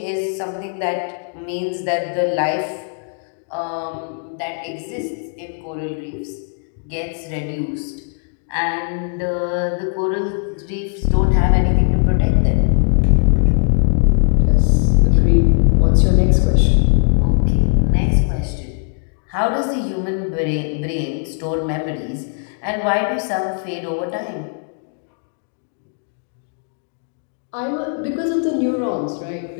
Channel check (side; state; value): right; silent; 57 dB below the other